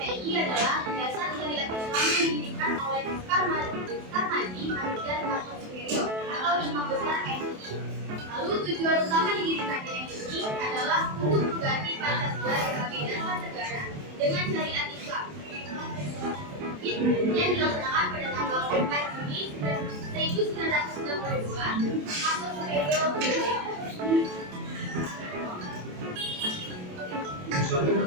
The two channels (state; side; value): late; left; 28 ms